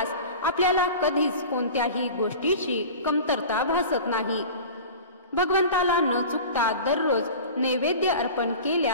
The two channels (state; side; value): inverted; both; correlation -0.36